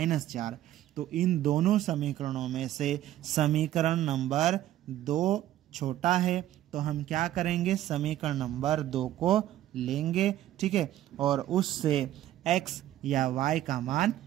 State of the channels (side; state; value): left; quieter; 13.2 dB